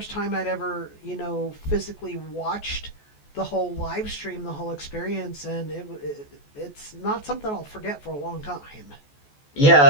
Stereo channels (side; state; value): right; late; 14 ms